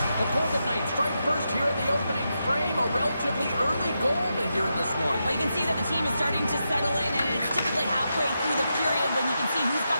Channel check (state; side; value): inverted; both; correlation -0.86